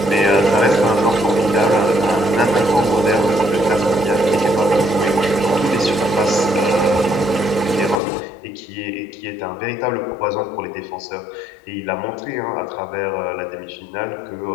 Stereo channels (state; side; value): drops out; right; at 8.0 s